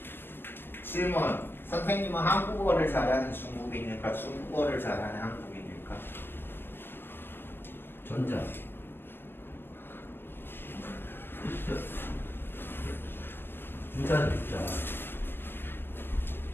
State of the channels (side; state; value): right; late; 0.10 ms